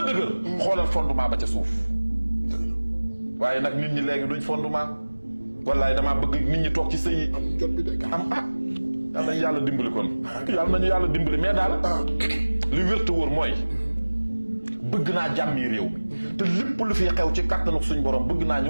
dëgër xoolal fondement ba ca suuf waaye nag nit ñi léegi duñ fondement wallaay damaa bëgg nit ñi toog ci sëy yi am yal nañu yàlla dimbali kon yàlla nañu yàlla dimbali mais daal li wér te wóor mooy bëgg naa jàmmi réew mi te lépp lu fi xew ci kàttanu suñ borom bëgg naa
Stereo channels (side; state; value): both; inverted; correlation -1.00